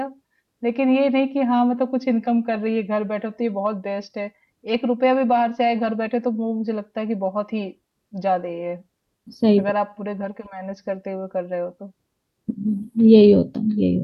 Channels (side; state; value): both; identical; correlation 1.00